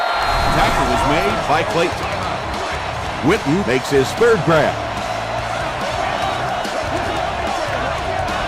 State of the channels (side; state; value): both; identical; correlation 1.00